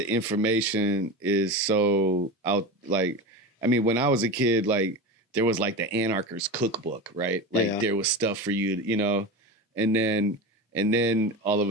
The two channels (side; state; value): both; normal; correlation 0.25